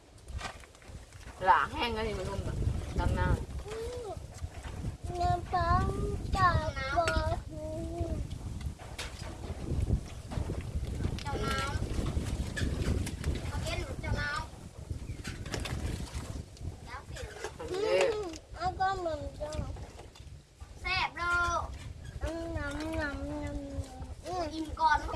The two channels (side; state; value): both; identical; correlation 1.00